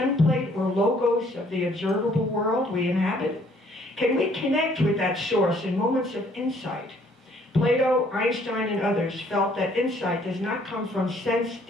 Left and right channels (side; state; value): both; normal; correlation 0.62